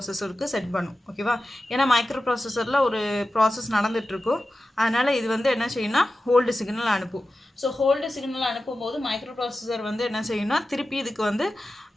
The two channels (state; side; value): normal; both; correlation 0.93